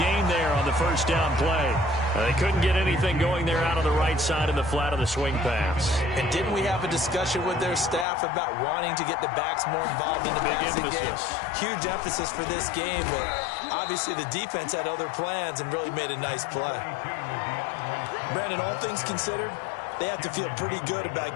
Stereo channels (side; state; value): right; drops out; at 8.1 s